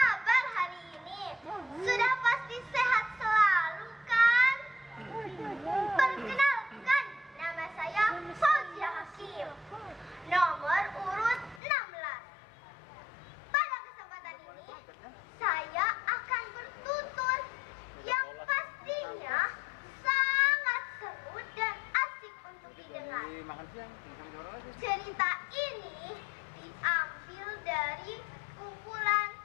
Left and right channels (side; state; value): right; drops out; at 11.6 s